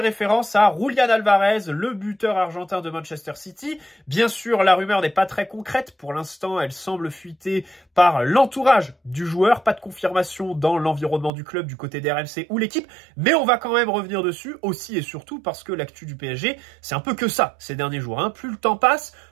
à Julián Alvarez, le buteur argentin de Manchester City. Bien sûr, la rumeur n'est pas très concrète, pour l'instant elle semble fuiter par l'entourage du joueur, pas de confirmation dans l'environnement du club du côté des RMC ou l'équipe, mais on va quand même revenir dessus aussi et surtout parce que l'actu du PSG, c'est un peu que ça ces derniers jours. Plus le temps passe,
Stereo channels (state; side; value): drops out; left; at 11.3 s